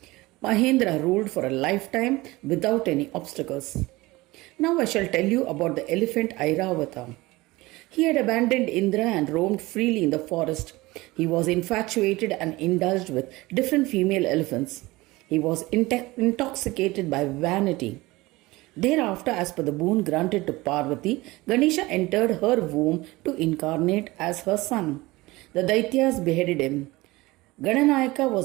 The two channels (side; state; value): left; quieter; 20.6 dB